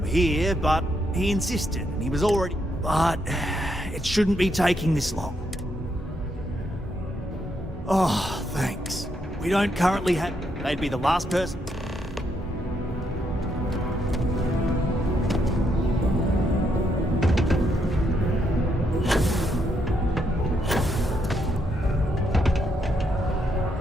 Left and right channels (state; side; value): normal; both; correlation 0.77